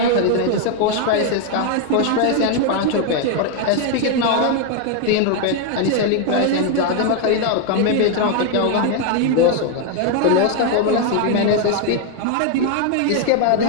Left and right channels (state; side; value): different; both; correlation 0.01